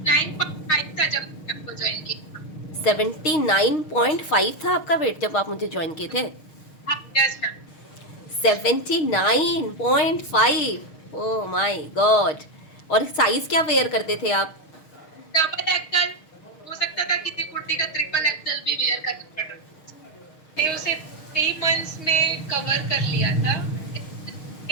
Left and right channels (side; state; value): right; late; 6.4 ms